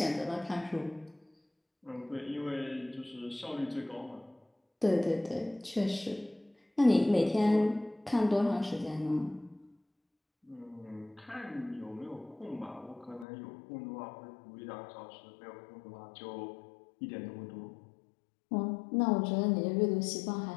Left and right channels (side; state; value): right; drops out; at 13.2 s